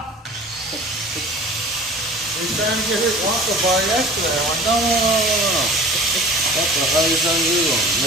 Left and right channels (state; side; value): normal; both; correlation 0.42